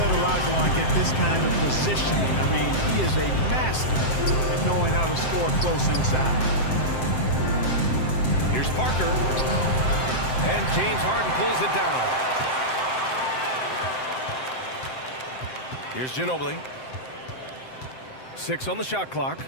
Olajuwon get this kind of positioning. I mean, he is a master at knowing how to score close inside. Here's Parker. And James Harden pulls it down. Here's Ginobili. 6 on the shot clock.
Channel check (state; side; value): late; right; 7.7 ms